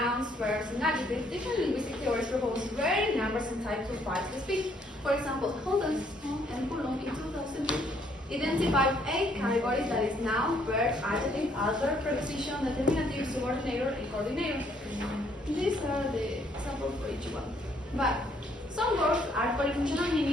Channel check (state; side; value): normal; both; correlation 0.67